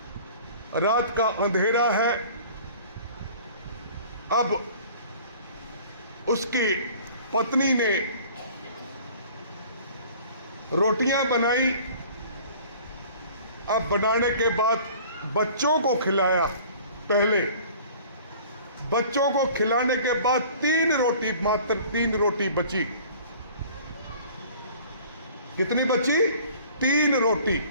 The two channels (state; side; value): inverted; both; correlation -0.48